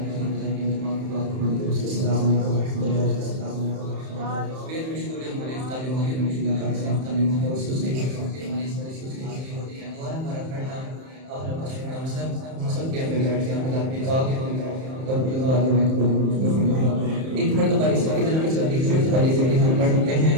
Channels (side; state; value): left; late; 31 ms